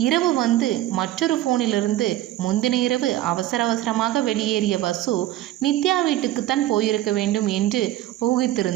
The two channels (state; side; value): quieter; left; 14.4 dB